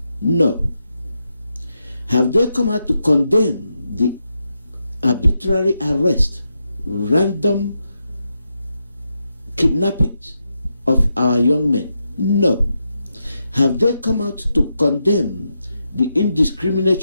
No. Have they come out to condemn the arbitrary arrest, random kidnappings of our young men? No. Have they come out to condemn the indiscriminate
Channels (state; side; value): inverted; both; correlation -0.85